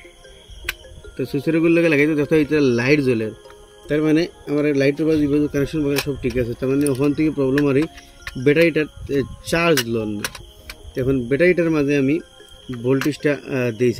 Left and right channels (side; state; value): both; identical; correlation 1.00